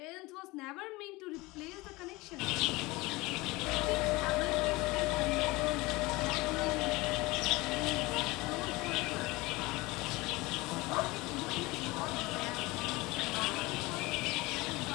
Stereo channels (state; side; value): quieter; right; 22.1 dB